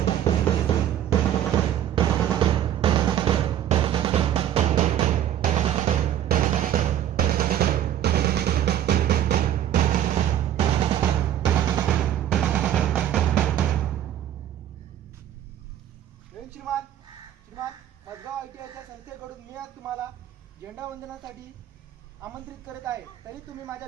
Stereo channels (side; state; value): left; quieter; 11.2 dB